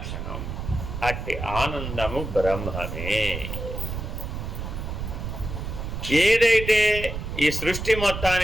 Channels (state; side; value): noise; right; rumble, 5 dB below the sound